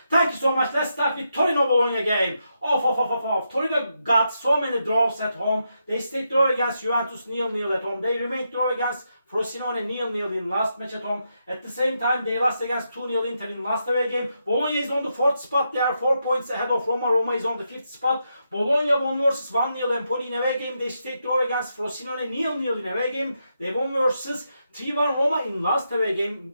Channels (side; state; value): both; inverted; correlation -0.83